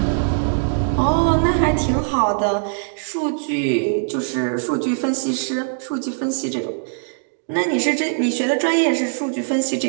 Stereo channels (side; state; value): left; silent; digital silence